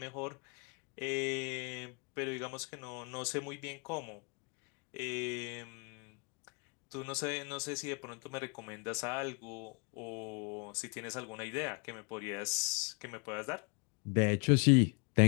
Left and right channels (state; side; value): quieter; right; 33.5 dB